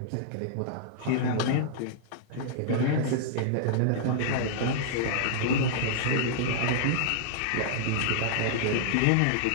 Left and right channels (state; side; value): different; both; correlation -0.01